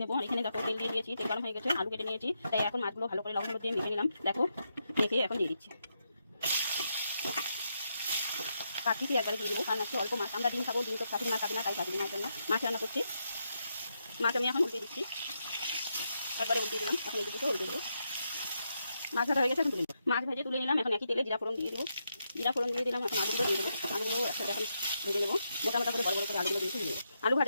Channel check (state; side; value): inverted; both; correlation -0.82